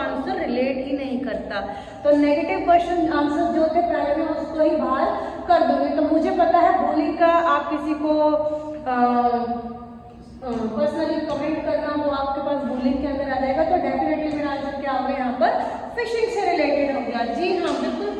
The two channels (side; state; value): both; identical; correlation 1.00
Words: रिलेट ही नहीं करता। तो नेगेटिव क्वेश्चन आंसर जो थे पहले मैं उसको ही बाहर कर दूंगी। तो मुझे पता है बूलिंग का आप किसी को पर्सनली कमेंट करना, वो आपके पास बूलिंग के अंदर आ जाएगा। तो डेफिनेटली मेरा आंसर क्या होगा यहाँ पर, फिशिंग से रिलेटेड हो गया। जी हाँ,